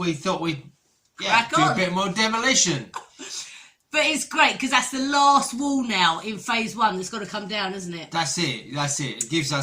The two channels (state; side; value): identical; both; correlation 1.00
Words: thought we'd do a bit more demolition. But it's great because that's the last wall now in phase 1 that's got to come down, isn't it? That's it. It gives